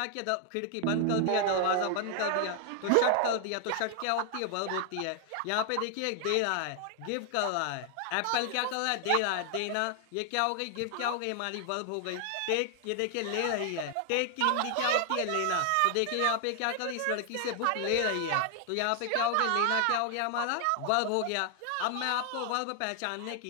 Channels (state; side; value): different; both; correlation 0.00